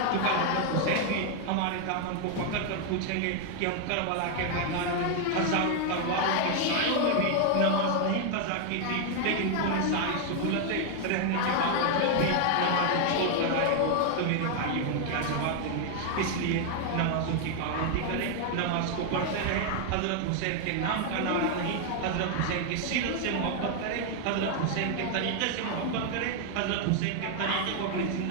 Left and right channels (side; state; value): both; different; correlation 0.00